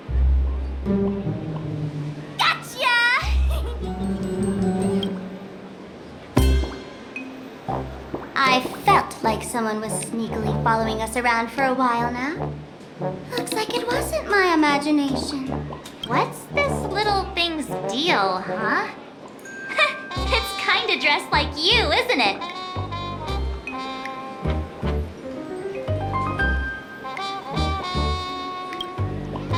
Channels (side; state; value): both; identical; correlation 1.00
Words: I felt like someone was sneakily following us around for a while now. Looks like it wasn't my imagination. What's this little thing's deal, huh? It's kinda dressed like you, isn't it?